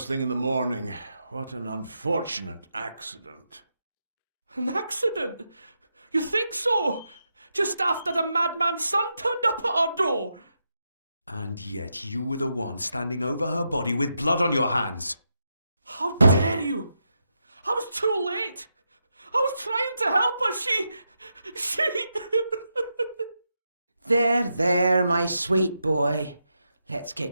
thing in the morning. What an unfortunate accident. An accident? You think so? Just after the madman's son turned up at our door? And yet you were the one standing over her body with blood on your hands. How dare you? I was too late. I was trying to help her. She... There, my sweet boy. Let's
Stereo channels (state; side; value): inverted; both; correlation -0.84